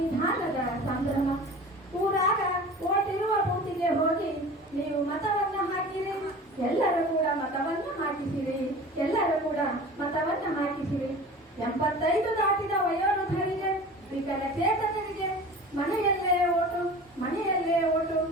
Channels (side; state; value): both; normal; correlation 0.38